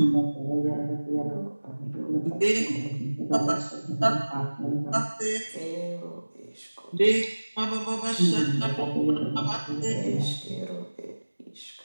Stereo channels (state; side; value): inverted; both; correlation -1.00